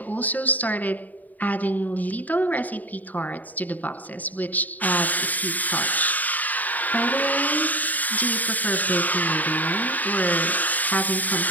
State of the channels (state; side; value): late; right; 0.081 ms